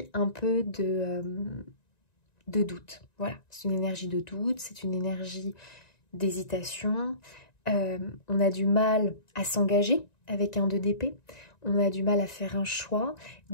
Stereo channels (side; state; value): right; late; 1.9 ms